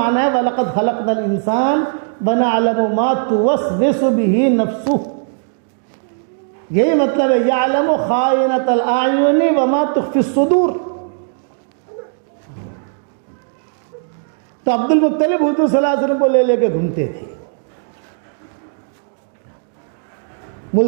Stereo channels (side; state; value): left; silent; digital silence